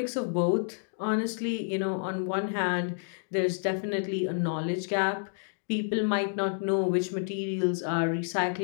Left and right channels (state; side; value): silent; right; digital silence